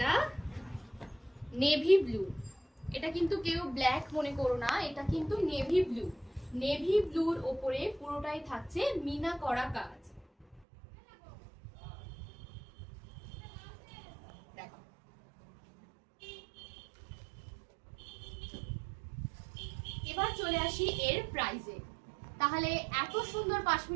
নেভি ব্লু। এটা কিন্তু কেউ ব্ল্যাক মনে করো না, এটা কিন্তু নেভি ব্লু। নেভি ব্লুর ওপরে পুরোটাই থাকছে মিনা করা কাজ। দেখো এবার চলে আসি এর প্রাইসে। তাহলে এত সুন্দর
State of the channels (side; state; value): left; drops out; at 10.7 s